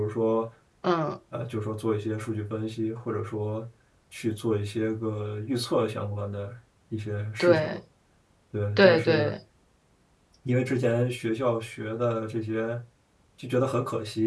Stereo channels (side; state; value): both; identical; correlation 1.00